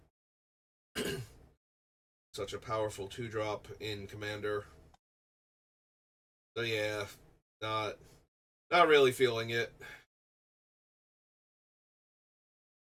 Such a powerful 2-drop in Commander. So yeah, not really feeling it.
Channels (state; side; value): identical; both; correlation 1.00